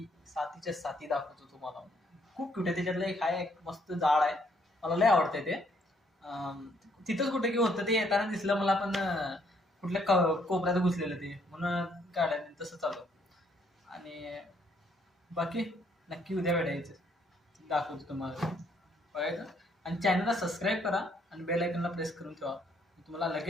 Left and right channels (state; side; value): normal; both; correlation 0.69